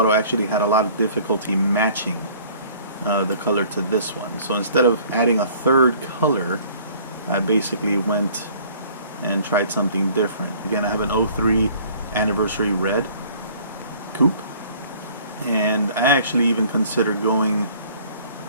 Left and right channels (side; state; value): both; inverted; correlation -0.53